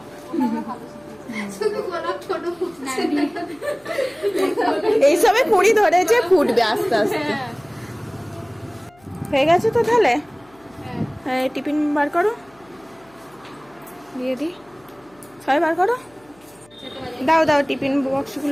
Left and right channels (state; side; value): noise; left; hum, 30 dB below the sound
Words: ওটা আমরা ভালো শিখেছি। শুধু গোলাপ ছোট ফুটছে। এইসবে কুড়ি ধরেছে, ফুটবে আস্তে আস্তে। হয়ে গেছে তো তাহলে। হ্যাঁ টিফিন বার করো, দিয়ে দিই। সবাই বার করো, দাও দাও টিফিন